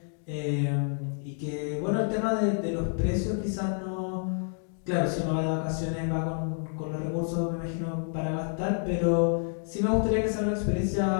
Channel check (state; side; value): silent; right; 59 dB below the other